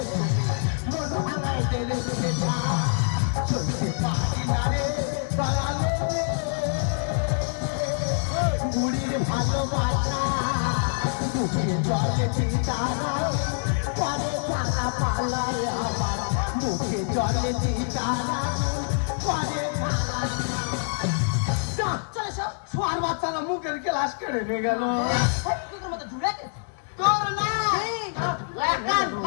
মন ভাঙায় দেরে পেটা। চলতে পারি না রে দয়ালে রে, বুড়ির ভালোবাসা। বুকে জলে চিতারা পরে টাকা পালায় আমার। বুকে জলে চিতারা পরে সোয়ার বাচ্চারা মুখের গ্লাস কেড়ে নিয়ে গেল। তোর না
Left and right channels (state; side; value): silent; right; digital silence